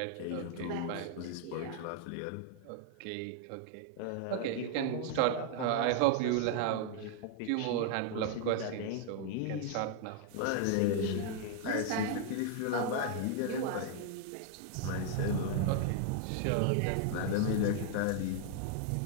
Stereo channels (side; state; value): both; different; correlation 0.00